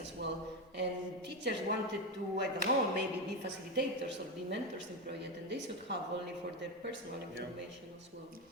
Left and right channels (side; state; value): both; normal; correlation 0.13